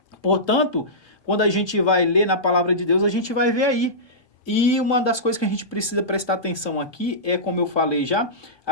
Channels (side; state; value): right; late; 1.2 ms